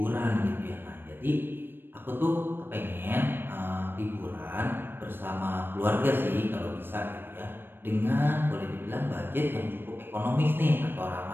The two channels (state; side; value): late; left; 0.098 ms